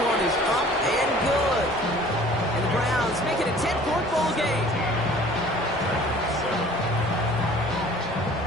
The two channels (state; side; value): normal; both; correlation 0.50